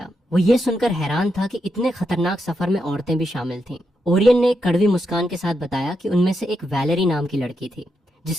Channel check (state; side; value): normal; both; correlation 0.84